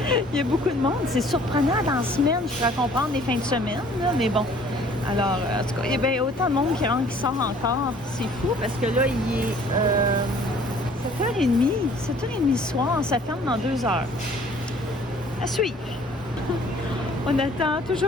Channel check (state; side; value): normal; both; correlation 0.55